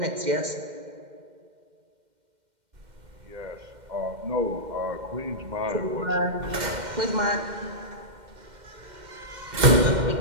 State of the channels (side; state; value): left; late; 2.1 ms